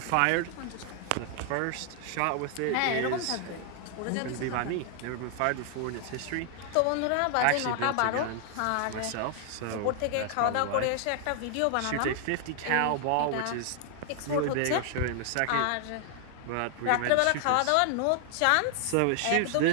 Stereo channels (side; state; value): both; different; correlation 0.00